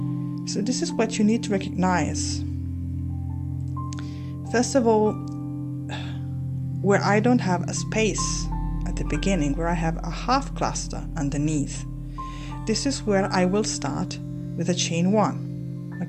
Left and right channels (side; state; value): both; identical; correlation 1.00